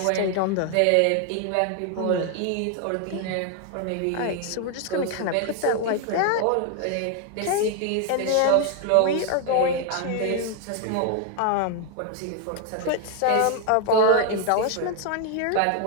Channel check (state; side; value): different; both; correlation 0.00